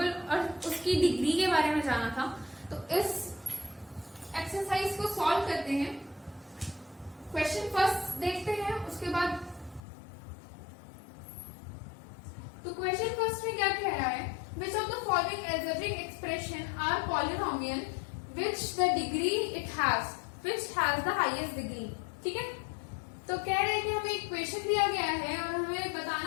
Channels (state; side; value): drops out; right; at 9.8 s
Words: और उसकी डिग्री के बारे में जाना था। तो इस एक्सरसाइज को सॉल्व करते हैं। क्वेश्चन फर्स्ट देखते हैं, उसके बाद तो क्वेश्चन फर्स्ट में क्या कह रहा है, which of the following algebraic expression are polynomial which the degree it has, which has the highest degree. ठीक है, तो कह रहे हैं कि हमें इक्वेशन दिया गया है और हमें